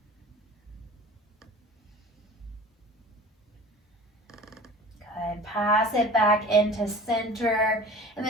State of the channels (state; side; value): normal; both; correlation 0.40